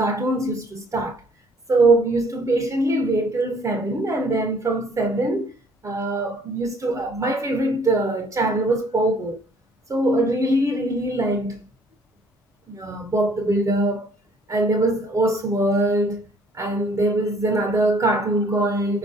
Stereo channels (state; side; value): normal; both; correlation 0.59